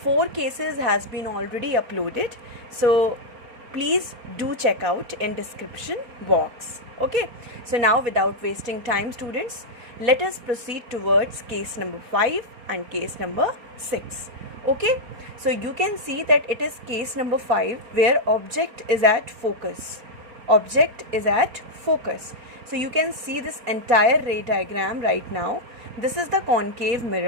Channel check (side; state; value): left; late; 4.3 ms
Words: 4 cases has been already uploaded, so please do check out in description box. Okay, so now without wasting time students, let us proceed towards case number 5 and case number 6. Okay, so you can see that it is case number 5 where object is at focus. Object is at focus. So you can see this entire ray diagram right now. This is the concave